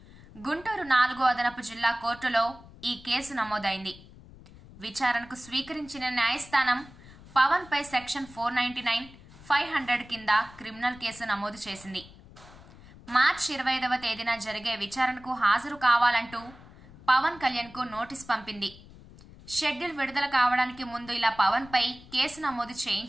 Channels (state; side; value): noise; left; rumble, 20 dB below the sound